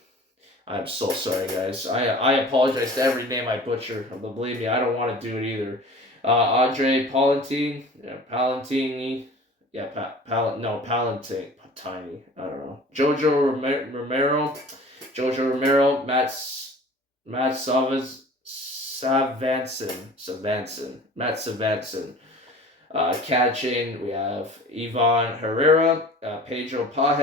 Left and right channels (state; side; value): normal; both; correlation 0.43